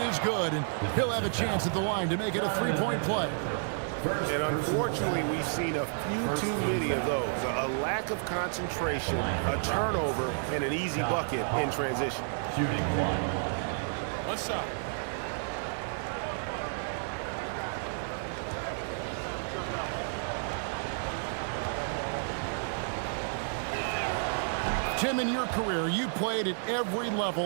good. And he'll have a chance at the line to make it a 3-point play. And unfortunately, we've seen a few too many of those. A lack of concentration, a turnover, and an easy bucket in transition. Shooting 1. What's up? Tim, in your career, you played at every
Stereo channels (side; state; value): left; silent; 57 dB below the other